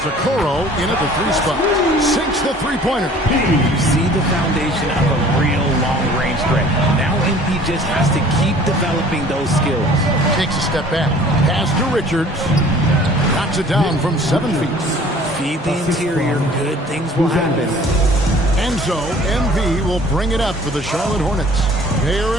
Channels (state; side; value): normal; both; correlation 0.50